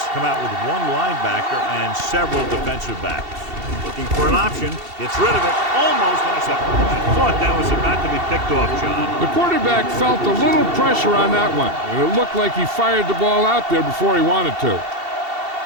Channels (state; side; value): late; left; 2.7 ms